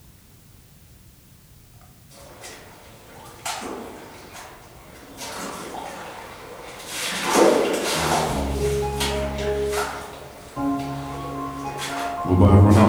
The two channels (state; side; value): identical; both; correlation 1.00